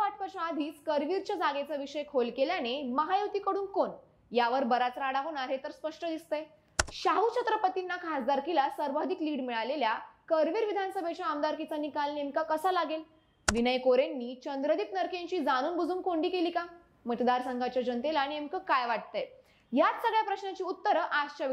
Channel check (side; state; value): both; identical; correlation 1.00